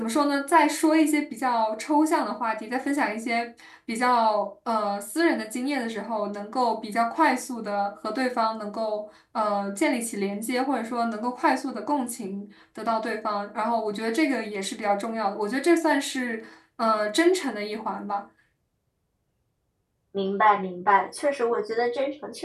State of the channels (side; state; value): both; identical; correlation 1.00